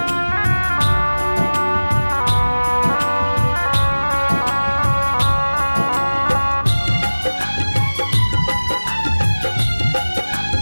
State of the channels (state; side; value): inverted; both; correlation -1.00